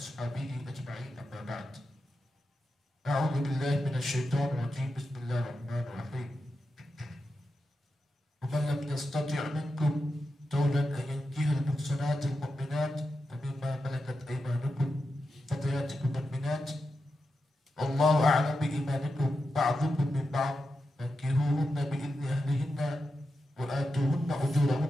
أجمعين، أما بعد. أعوذ بالله من الشيطان الرجيم، بسم الله الرحمن الرحيم. ومن لم يستطع منكم طولا أن ينكح المحصنات المؤمنات فمما ملكت أيمانكم فتياتكم المؤمنات والله أعلم بإيمانكم بعضكم من بعض فانكحوهن بإذن أهلهن وآتوهن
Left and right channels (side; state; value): both; normal; correlation 0.89